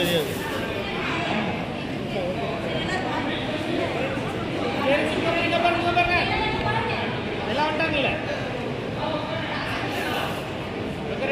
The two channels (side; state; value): both; identical; correlation 1.00